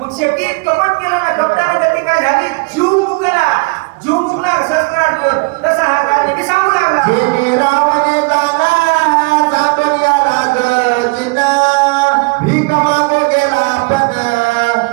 शेवटी कपट केलं ना. कपटाने गती काय झाली? जीव मुकला सहस्र अर्जुन. तसा हा काळ की सांगू लागला. जेने रावणे जाना जातून याला गजिना भीक मागू गेला पण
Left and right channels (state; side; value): quieter; left; 29.8 dB